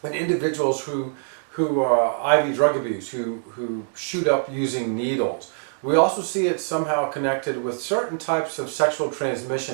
in individuals who IV drug abuse, who shoot up using needles. We also see it somehow connected with certain types of sexual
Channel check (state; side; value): silent; left; digital silence